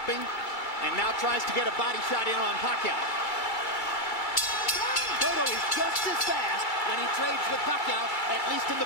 and now tries to get a body shot in on Pacquiao. Cotto is just as fast when he trades with Pacquiao, at least in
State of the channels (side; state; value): right; late; 2.2 ms